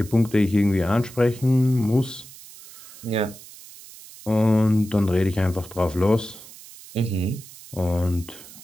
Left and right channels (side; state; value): right; noise; hiss, 18 dB below the sound